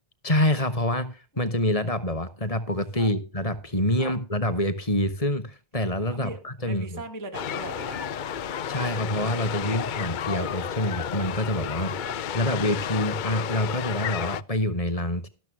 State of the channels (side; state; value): right; late; 1.7 ms